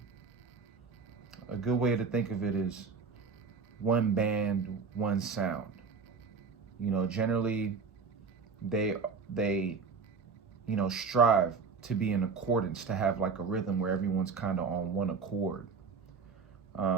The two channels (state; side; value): quieter; left; 5.2 dB